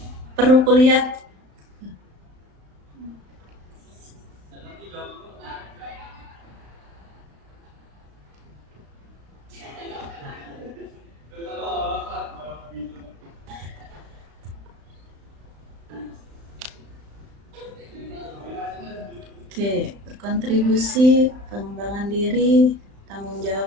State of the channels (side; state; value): left; late; 35 ms